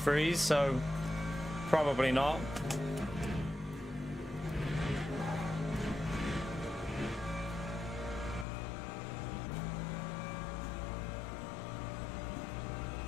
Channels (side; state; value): right; drops out; at 8.5 s